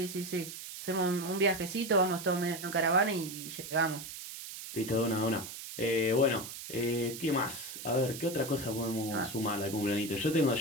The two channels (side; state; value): right; noise; hiss, 10 dB below the sound